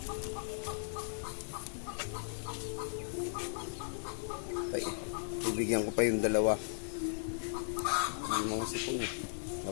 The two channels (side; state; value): right; silent; digital silence